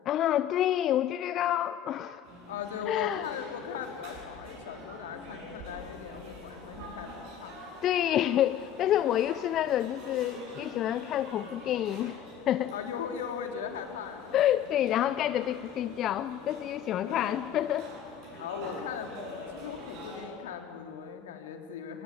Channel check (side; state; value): right; quieter; 10.4 dB